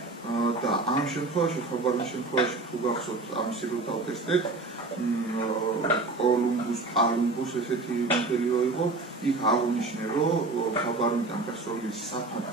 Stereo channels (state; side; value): quieter; left; 3.3 dB